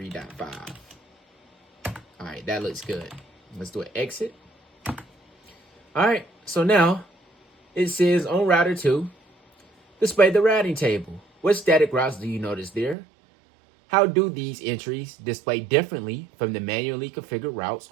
All right, that looks good. Let's do an exit. All right, so now it says on router 2, display the routing table. What static routes do you notice there? How do these entries display differently from the manually configured routes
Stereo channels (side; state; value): left; drops out; at 13.0 s